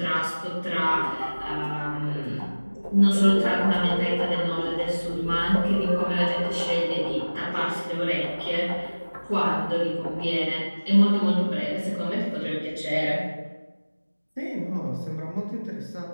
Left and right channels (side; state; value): both; inverted; correlation -1.00